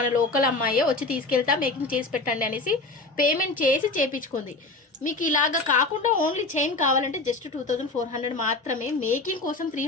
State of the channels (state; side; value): quieter; right; 3.4 dB